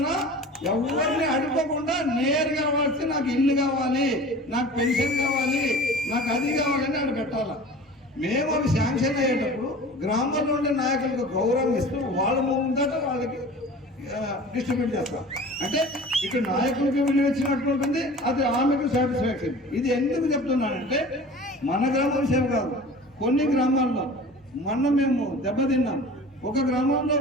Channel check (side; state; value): both; normal; correlation 0.41